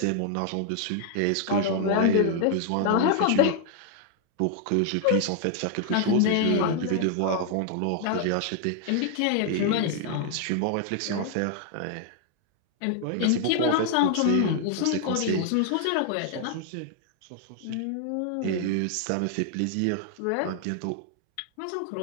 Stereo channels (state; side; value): different; both; correlation 0.00